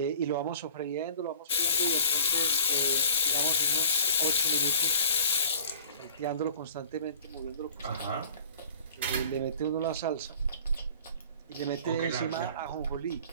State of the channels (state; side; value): inverted; both; correlation -0.47